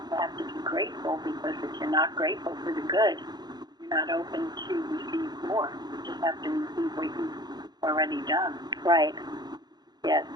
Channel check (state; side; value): late; left; 0.20 ms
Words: have to be grateful, because if you're not grateful for the good, you're not open to receive more. You just have to receive what you've already done. Right. Yes.